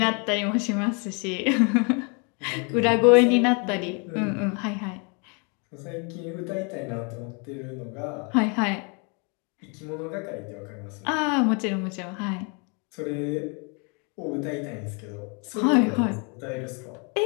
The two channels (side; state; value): right; quieter; 34.5 dB